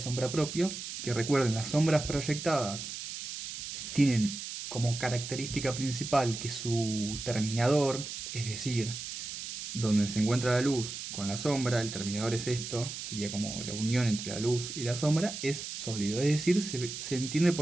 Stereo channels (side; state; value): right; noise; hiss, 8 dB below the sound